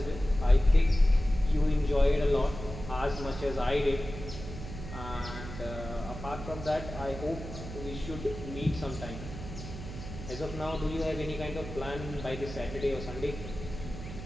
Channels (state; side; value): noise; right; hum, 10 dB below the sound